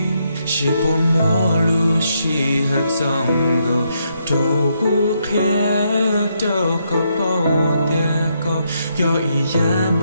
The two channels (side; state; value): both; inverted; correlation -0.77